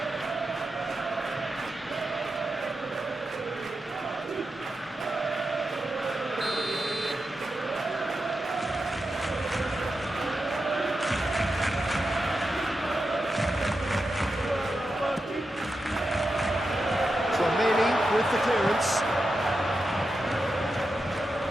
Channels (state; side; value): normal; both; correlation 0.89